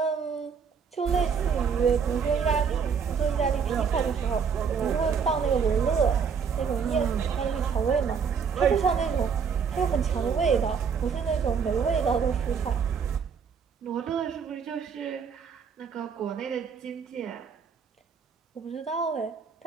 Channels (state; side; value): quieter; left; 6.4 dB